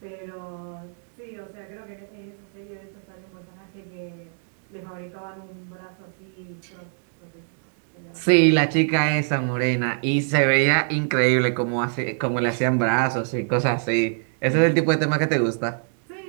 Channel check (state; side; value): silent; left; 60 dB below the other